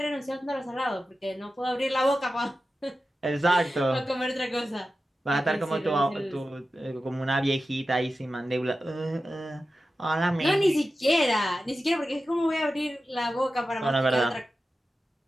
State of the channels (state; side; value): normal; both; correlation 0.93